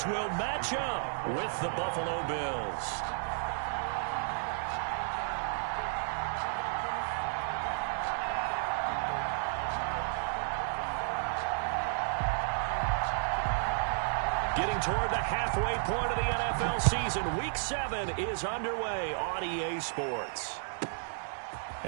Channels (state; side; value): silent; left; digital silence